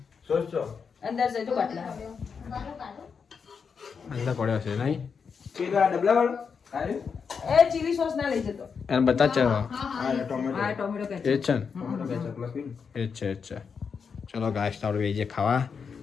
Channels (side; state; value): right; quieter; 6.0 dB